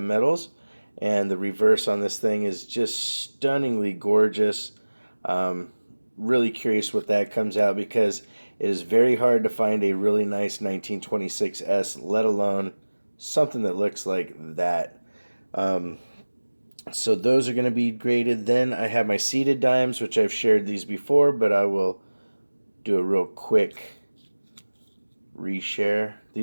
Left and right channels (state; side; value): inverted; both; correlation -1.00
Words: metals. And the reverse on this thing is just stunningly gorgeous. Um, really curious what that comes out because it is very hard to find a really nice 1926S, let alone something that looks like that. Um, so those are going to be graded. Then I have my seated dimes, which I've shared these before, but I will do a real quick reshare.